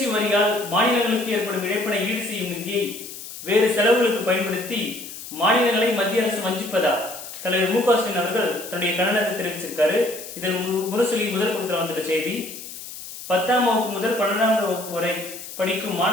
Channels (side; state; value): left; noise; hiss, 12 dB below the sound